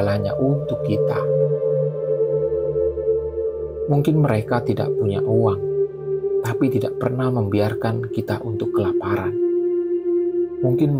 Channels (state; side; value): identical; both; correlation 1.00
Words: untuk kita. Mungkin mereka tidak punya uang, tapi tidak pernah membiarkan kita untuk kelaparan. Mungkin